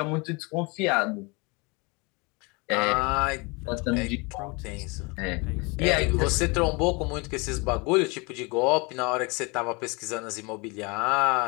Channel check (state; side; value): quieter; right; 28.4 dB